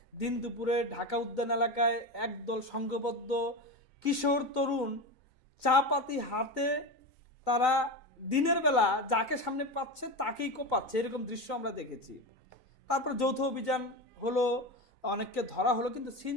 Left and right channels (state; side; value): late; right; 3.9 ms